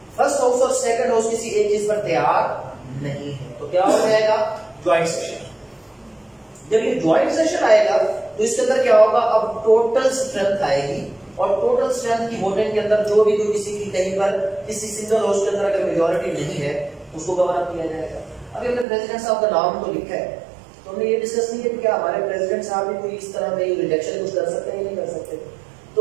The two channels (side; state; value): left; drops out; at 18.9 s